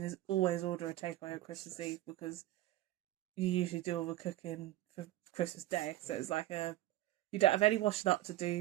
is always order a takeaway on Christmas Eve, because you usually do all the cooking for Christmas Day. So it's like you don't have any washing up to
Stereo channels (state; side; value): quieter; left; 15.3 dB